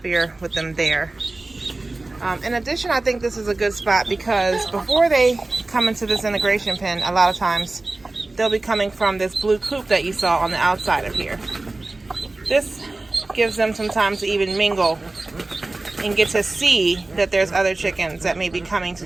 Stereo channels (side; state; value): left; quieter; 3.1 dB